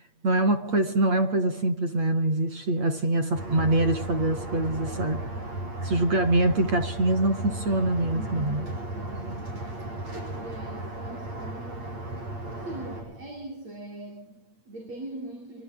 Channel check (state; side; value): late; left; 8.6 ms